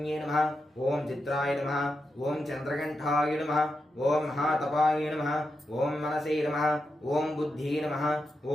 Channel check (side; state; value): both; normal; correlation 0.87